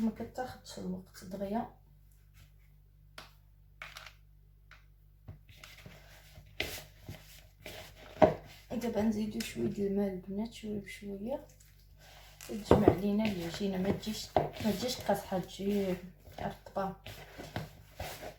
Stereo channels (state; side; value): identical; both; correlation 1.00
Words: ما كتاخذش الوقت دغيا. دابا نزيدو شويه د الماء البنات، شويه بشويه، تجمع لينا العجينه. ما تجيش قاصحه، تجي رطبه.